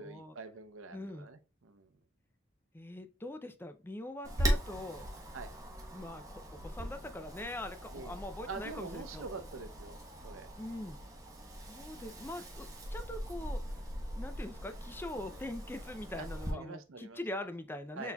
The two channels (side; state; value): both; normal; correlation 0.72